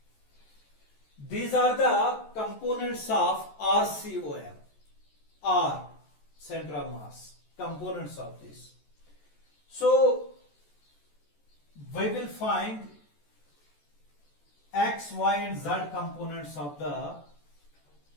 These are the components of RCOM. R, center of mass, components of this. So we will find x, y and z components of the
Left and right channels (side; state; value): right; late; 14 ms